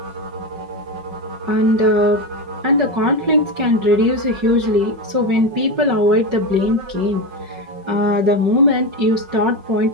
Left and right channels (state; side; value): late; left; 5.4 ms